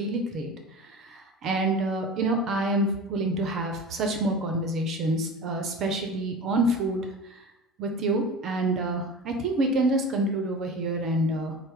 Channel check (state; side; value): normal; both; correlation 0.33